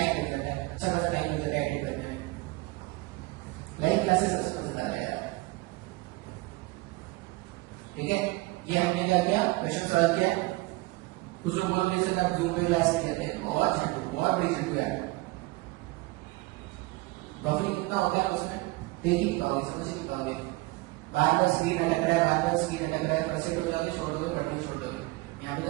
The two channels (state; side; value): quieter; left; 22.2 dB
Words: लग जाता है, अच्छा खासा टाइम लग जाता है एडिट करने में। लाइव क्लासेस सबसे मजा आता है यार। ठीक है, ये हमने क्या किया, क्वेश्चन सॉल्व किया। कुछ लोग बोलोगे सर आप जूम पे क्लास करते हैं, बहुत झंडू, बहुत बड़ी झंडू है। बफरिंग कितना हो गया उसमें, देख ही नहीं पाओगे, समझ ही नहीं पाओगे। बार बार स्क्रीन अटक रहा है, बार बार स्क्रीन अटक रहा है, फ्रस्ट्रेट हो जाओगे, छोड़ दोगे, पढ़ने छोड़ दोगे। यहाँ पे